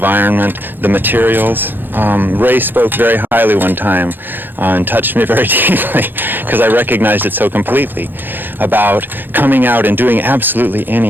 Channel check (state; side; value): late; left; 0.094 ms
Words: the materials. Ray spoke very highly one time and touched me very deeply because I recognized it so completely about coming out and doing absolutely